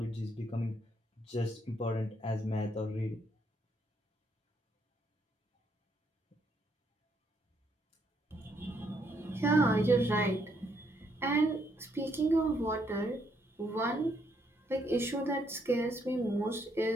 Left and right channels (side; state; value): both; normal; correlation 0.73